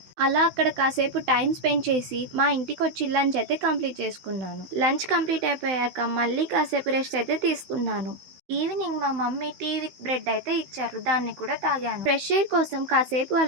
అలా అక్కడ కాసేపు టైం స్పెండ్ చేసి మా ఇంటికి వచ్చి లంచ్ అయితే కంప్లీట్ చేసుకున్నాను. లంచ్ కంప్లీట్ అయిపోయాక మళ్ళీ కాసేపు రెస్ట్ అయితే తీసుకున్నాను. ఈవినింగ్ మా మమ్మీ టీ విత్ బ్రెడ్ అయితే ఇచ్చారు. దాన్ని కూడా తాగాను. ఫ్రెష్ ఎయిర్ కోసం కాసేపు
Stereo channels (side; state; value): left; late; 16 ms